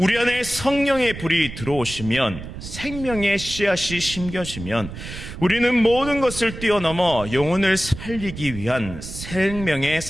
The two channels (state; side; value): noise; right; rumble, 11 dB below the sound